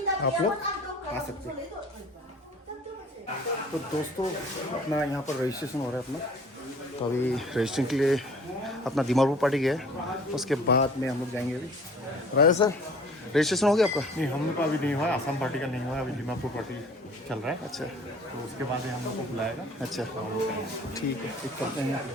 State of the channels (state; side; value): normal; both; correlation 0.49